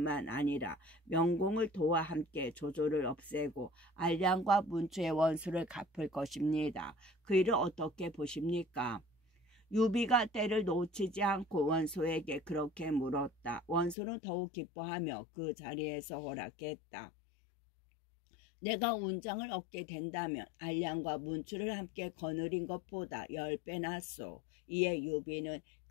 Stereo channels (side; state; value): right; drops out; at 14.0 s